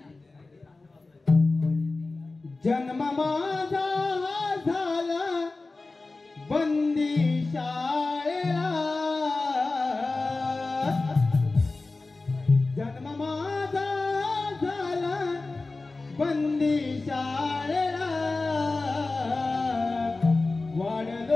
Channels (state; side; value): quieter; right; 3.5 dB